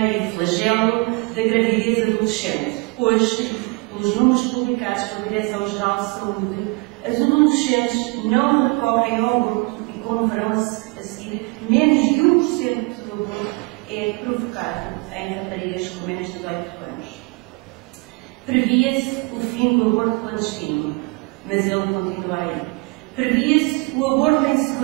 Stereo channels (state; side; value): quieter; left; 28.5 dB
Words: e o flagelo da gravidez adolescente. Hoje, pelos números publicados pela Direção-Geral de Saúde, as adolescentes não recorrem ao aborto e, como verão a seguir, menos de 1% do aborto é provocado em raparigas com menos de 18 anos. Previa-se o fim do aborto clandestino, mas ele continua aí. Previa-se o aborto em